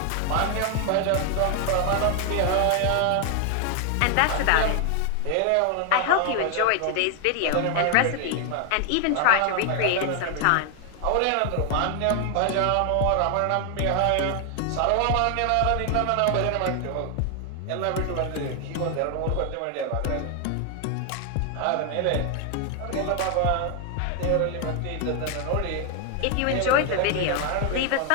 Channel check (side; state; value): both; different; correlation 0.00